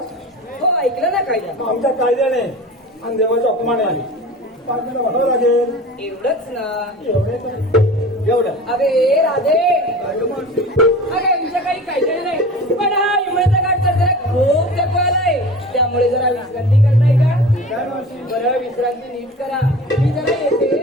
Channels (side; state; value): both; normal; correlation 0.37